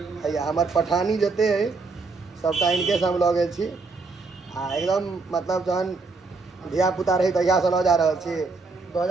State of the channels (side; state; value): left; quieter; 4.0 dB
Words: भैया हमार पठानी जते है सबटा इनके से हम लऽ गेल छी आ एकदम मतलब जहन धिया पुता रही तहिया से लऽ जा रहल छी